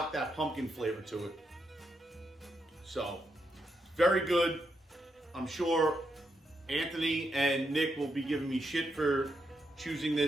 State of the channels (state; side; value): normal; both; correlation 0.82